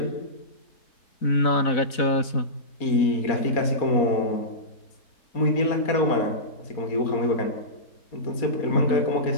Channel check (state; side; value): late; right; 4.0 ms